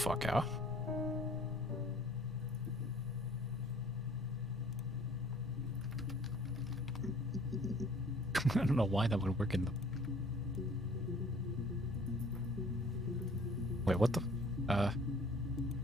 out. I don't know why that would work in the... Wait, what the...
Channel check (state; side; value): normal; both; correlation 0.53